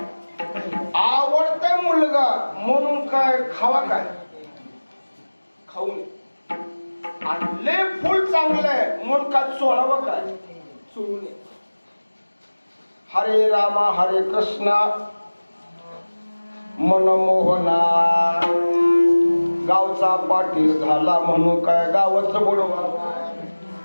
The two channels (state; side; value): inverted; both; correlation -1.00